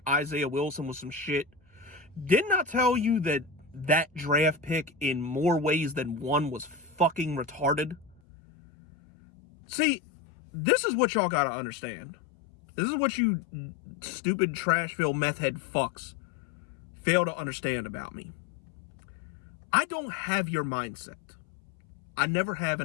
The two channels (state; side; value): drops out; right; at 8.2 s